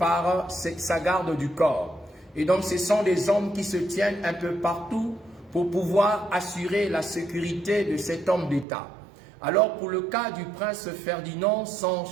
sa garde du corps. Et donc ce sont des hommes qui se tiennent un peu partout pour pouvoir assurer la sécurité de cet homme d'État. Alors pour le cas du prince Ferdinand, son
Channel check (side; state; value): left; drops out; at 8.7 s